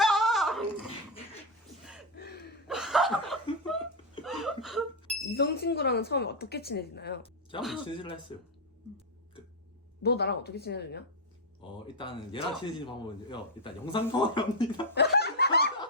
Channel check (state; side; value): normal; both; correlation 0.03